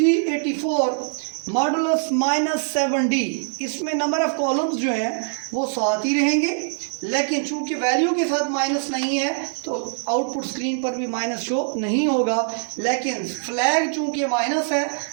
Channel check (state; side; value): silent; left; 63 dB below the other